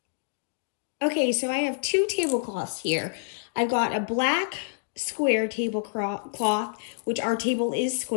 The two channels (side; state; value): right; silent; digital silence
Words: Okay, so I have two tablecloths here. I've got a black square tablecloth, which our table is